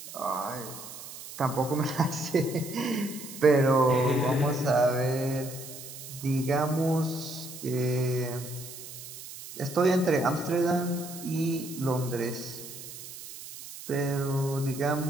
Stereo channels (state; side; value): noise; right; hiss, 13 dB below the sound